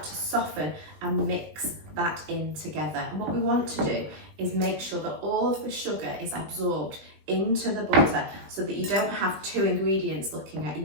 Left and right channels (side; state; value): left; late; 20 ms